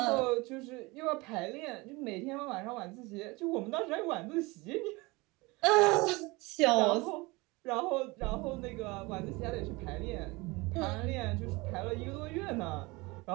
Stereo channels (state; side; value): quieter; left; 24.0 dB